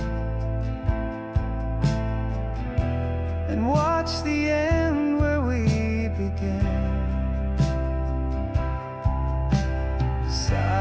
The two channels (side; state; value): both; identical; correlation 1.00